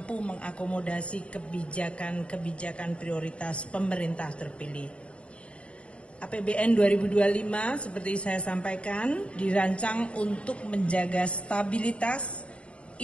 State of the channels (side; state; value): right; late; 0.059 ms